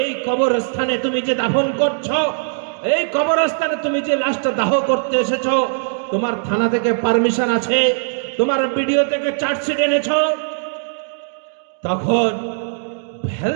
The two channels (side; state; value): left; silent; digital silence